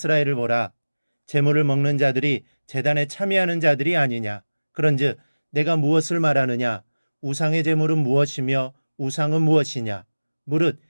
보라. 제물을 먹는 자들이 제단에 참여하는 자들이 아니냐. 그런즉 내가 무엇을 말하느냐. 우상의 제물은 무엇이며 우상은 무엇이냐. 무릇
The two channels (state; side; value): inverted; both; correlation -1.00